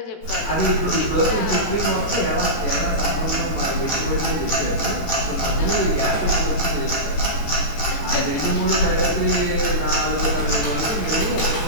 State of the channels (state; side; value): late; right; 18 ms